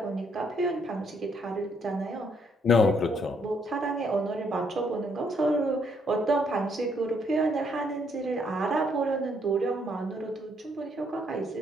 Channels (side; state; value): both; normal; correlation 0.71